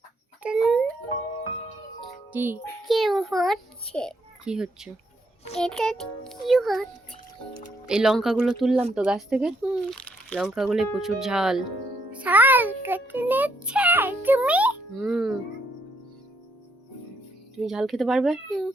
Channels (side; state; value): both; normal; correlation 0.73